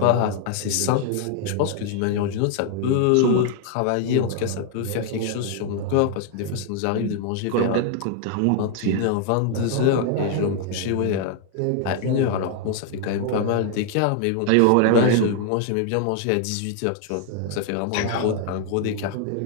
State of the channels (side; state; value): both; different; correlation 0.00